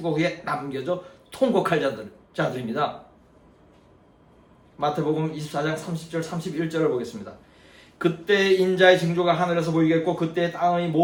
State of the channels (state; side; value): identical; both; correlation 1.00